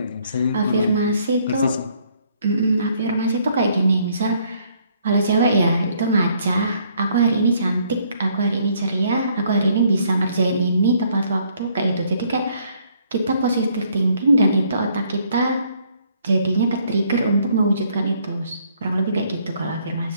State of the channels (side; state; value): both; inverted; correlation -0.66